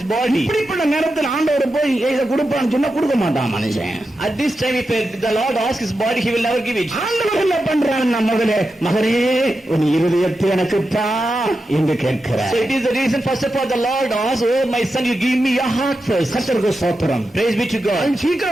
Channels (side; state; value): both; normal; correlation 0.90